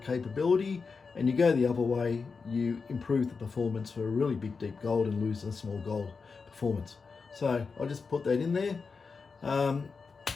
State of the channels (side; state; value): right; quieter; 4.9 dB